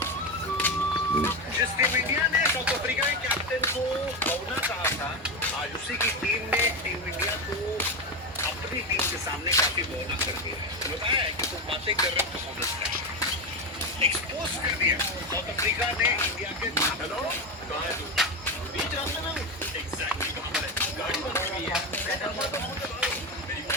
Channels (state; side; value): normal; both; correlation 0.14